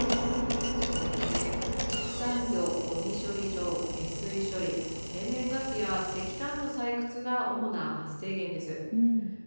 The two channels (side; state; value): both; inverted; correlation -1.00